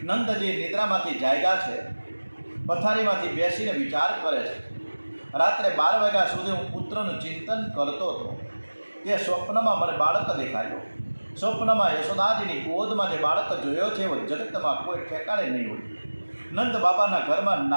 નંદજી નિદ્રામાંથી જાગ્યા છે। પથારીમાંથી બેસીને વિચાર કરે છે। રાત્રે 12 વાગ્યા સુધી હું પુત્રનું ચિંતન કરતો હતો। તે સ્વપ્નમાં મને બાળક દેખાયો। સ્વપ્નમાં યશોદાજીની ગોદમાં જે બાળક જોયો છે એવો જગતમાં કોઈ ઠેકાણે નહીં હોય। નંદ બાબાના ઘરમાં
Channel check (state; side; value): inverted; both; correlation -1.00